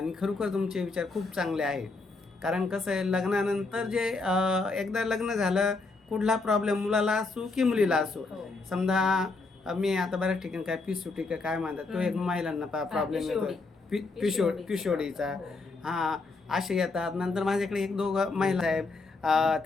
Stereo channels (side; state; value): right; quieter; 3.7 dB